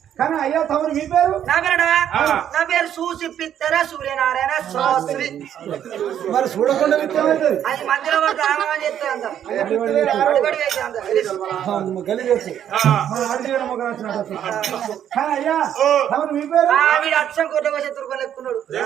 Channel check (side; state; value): left; quieter; 10.0 dB